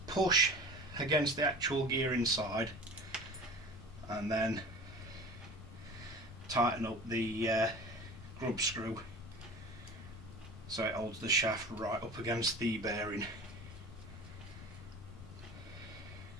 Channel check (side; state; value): left; noise; rumble, 14 dB below the sound